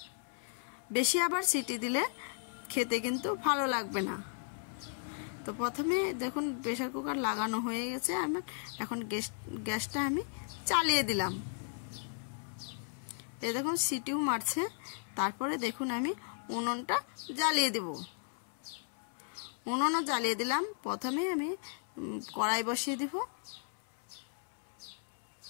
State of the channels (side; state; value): right; silent; 54 dB below the other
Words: বেশি আবার সিটি দিলে খেতে কিন্তু ভালো লাগবে না। তো প্রথমে দেখুন প্রেসার কুকার লাগানো হয়ে গেছে আমার, এখন গ্যাসটা আমি চালিয়ে দিলাম। এই দেখুন সিটিও মারছে। তারপরে দেখুন আমি উনুনটা জ্বালিয়ে দেব। উনুনও জ্বালিয়ে দিলাম। প্রথমে আমি কড়াই বসিয়ে দিব।